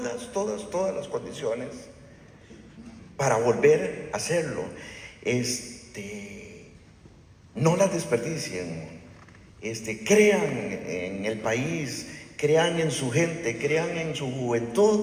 las condiciones para volver a hacerlo. No las desperdicien. Crean en el país, crean en su gente, crean en su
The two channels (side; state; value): both; identical; correlation 1.00